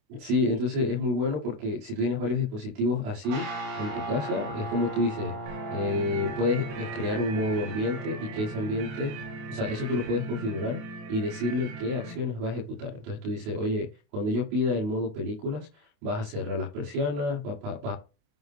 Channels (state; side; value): late; left; 28 ms